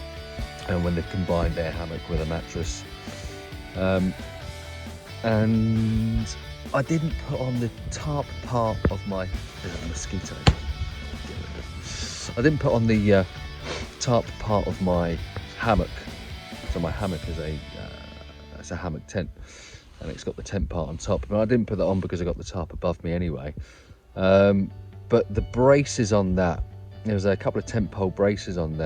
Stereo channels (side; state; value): both; identical; correlation 1.00